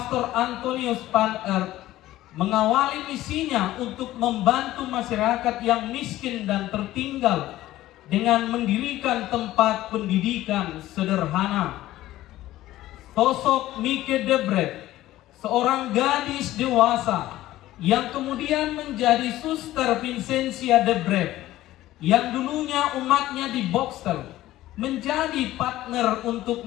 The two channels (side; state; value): right; quieter; 15.3 dB